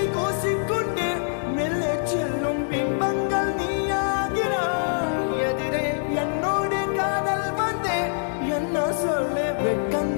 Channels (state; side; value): silent; right; 62 dB below the other